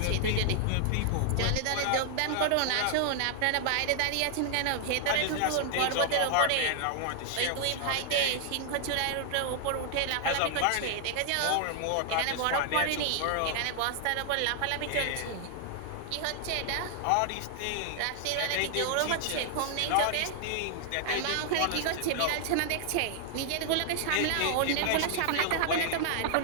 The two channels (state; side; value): different; both; correlation 0.00